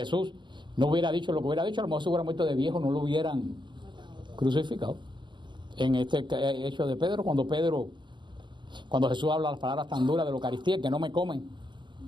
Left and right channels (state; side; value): late; left; 0.23 ms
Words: no hubiera dicho lo que hubiera dicho, a lo mejor se hubiera muerto de viejo, no lo hubieran crucificado. En este hecho de Pedro, cuando Jesús habla las palabras tan duras de la Eucaristía, que no me comen,